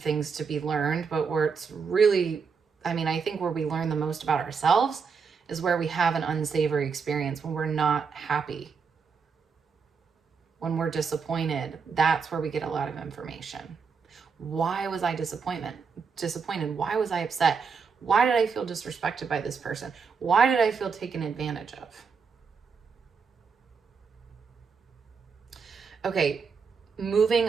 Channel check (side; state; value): left; quieter; 5.7 dB